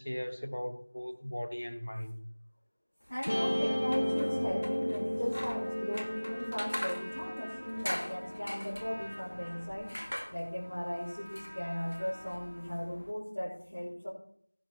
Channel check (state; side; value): inverted; both; correlation -1.00